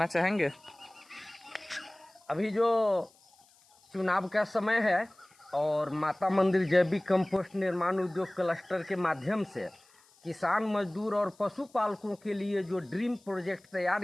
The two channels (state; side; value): noise; left; hiss, 30 dB below the sound